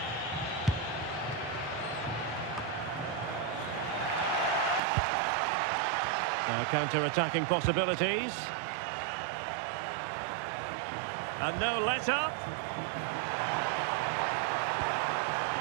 Now counter-attacking possibilities. And no let-up.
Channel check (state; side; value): drops out; left; at 4.8 s